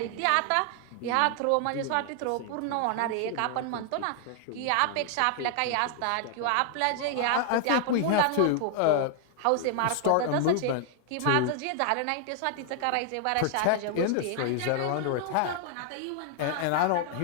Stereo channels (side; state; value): both; different; correlation 0.00